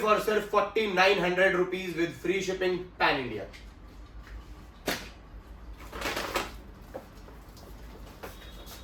और सिर्फ ₹4,900 with free shipping pan India.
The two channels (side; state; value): both; identical; correlation 1.00